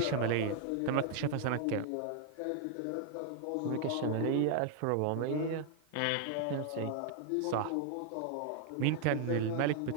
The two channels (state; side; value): different; both; correlation 0.00